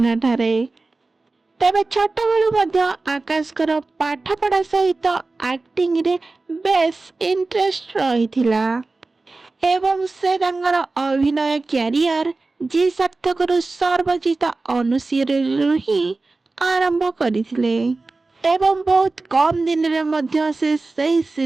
ठारे। तेबे छोट बेलू मध्य आकाशकर पाठपढ़ा सहित एक्टिंग रे बेस इंटरेस्ट रहिथिला एवं से तांकर अभिनय कैरियर जी सार्थक सर्वजित अनुशील ही आरंभ करथिले एवं बहुत कम दिन रे मध्य से सही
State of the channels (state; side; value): quieter; left; 3.5 dB